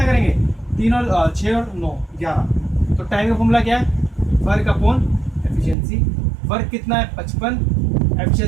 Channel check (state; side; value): drops out; left; at 5.8 s